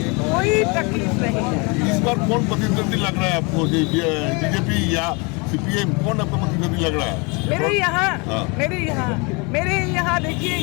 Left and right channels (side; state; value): right; quieter; 29.8 dB